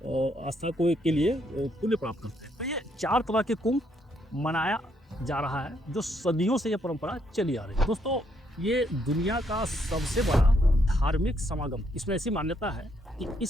के लिए पुण्य प्राप्त करते हैं। तो ये 4 तरह के कुंभ मनाया जा रहा है जो सदियों से ये परंपरा चली आ रही है। दोस्तों, ये दुनिया का सबसे बड़ा धार्मिक समागम। इसमें ऐसी मान्यता है कि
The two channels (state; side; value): normal; both; correlation 0.73